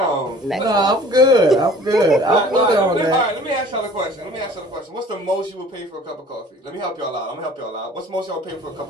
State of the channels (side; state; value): both; normal; correlation 0.49